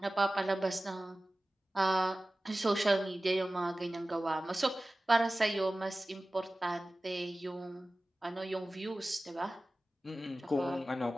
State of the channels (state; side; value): normal; both; correlation 0.97